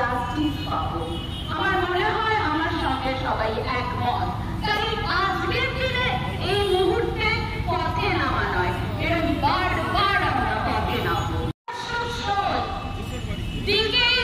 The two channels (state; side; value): identical; both; correlation 1.00